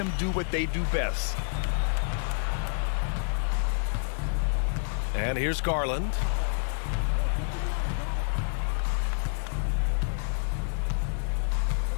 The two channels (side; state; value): right; silent; digital silence